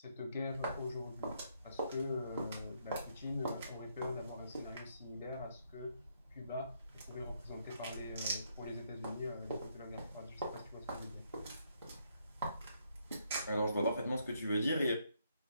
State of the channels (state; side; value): inverted; both; correlation -0.74